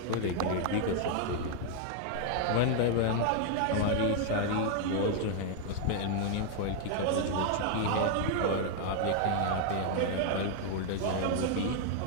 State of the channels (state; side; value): different; both; correlation 0.00